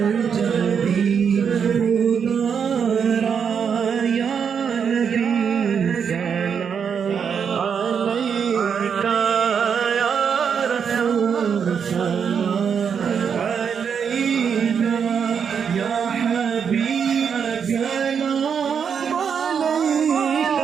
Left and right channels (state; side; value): quieter; left; 7.0 dB